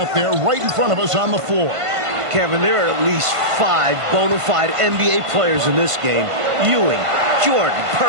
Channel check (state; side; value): late; left; 1.5 ms